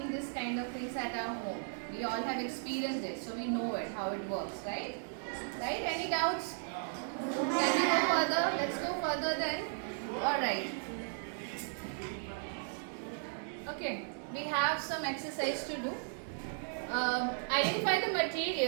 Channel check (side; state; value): left; silent; digital silence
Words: this kind of things at our home. We all have experienced it, so we know it, how it works, right? Right? Any doubts? Can we go further? Let's go further then. Alright. Okay, we have some exercise to do. Identify the